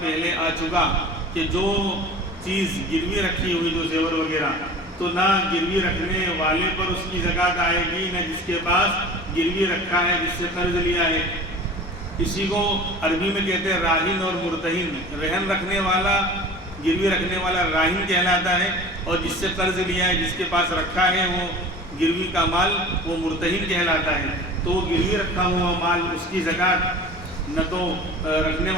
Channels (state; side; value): normal; both; correlation 0.39